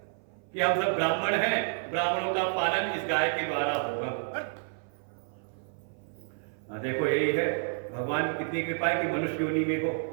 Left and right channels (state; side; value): silent; left; 57 dB below the other